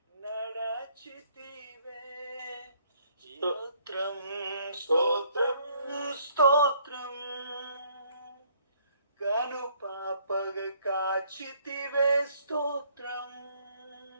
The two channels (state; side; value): inverted; both; correlation -0.64